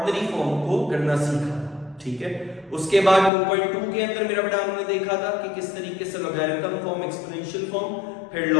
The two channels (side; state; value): right; drops out; at 3.3 s